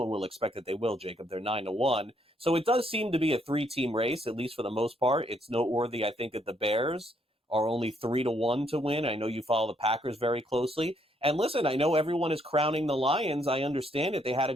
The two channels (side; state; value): both; normal; correlation 0.71